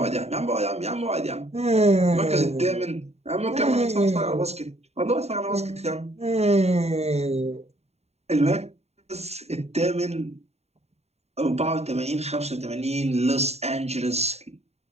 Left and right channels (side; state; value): left; late; 0.31 ms